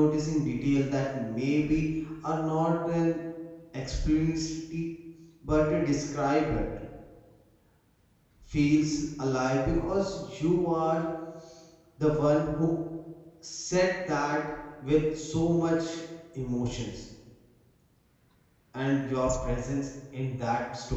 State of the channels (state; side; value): identical; both; correlation 1.00